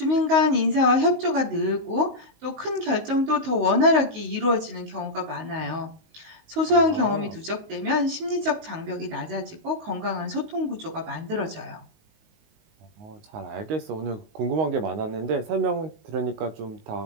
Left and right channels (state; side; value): late; left; 19 ms